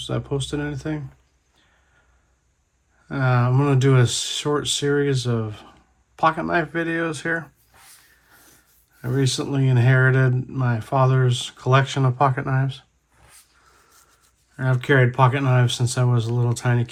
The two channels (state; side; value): identical; both; correlation 1.00